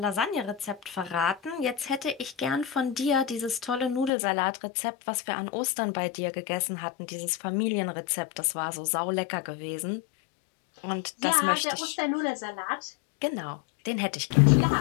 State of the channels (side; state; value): right; drops out; at 4.1 s